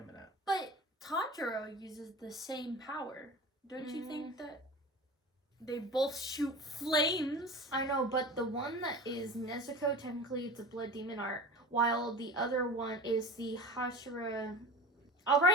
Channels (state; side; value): normal; both; correlation 0.34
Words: But Tanjiro uses the same power. Don't you think that they both shoot flames? I know, but the one that is Nezuko, technically it's a blood demon art, while the other one is the Hashira. I'll